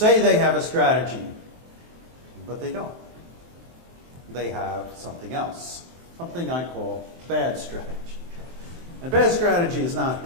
they have a strategy, but they don't. They have something else, something I call bad strategy. And bad strategy is not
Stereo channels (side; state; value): left; late; 23 ms